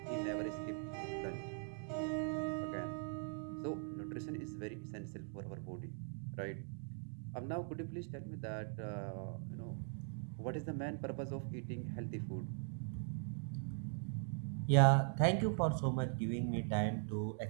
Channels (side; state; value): left; silent; 50 dB below the other